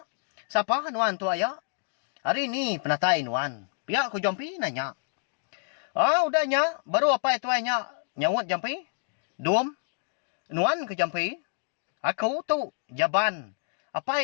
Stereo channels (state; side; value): silent; right; digital silence